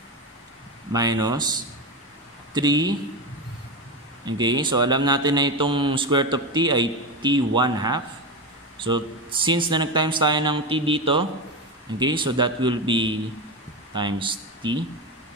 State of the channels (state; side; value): normal; both; correlation 0.17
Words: minus 3. Okay? So, alam natin na itong square root of t ay t 1/2. So, since na nag-times tayo ng t dito, okay, so that will be times t.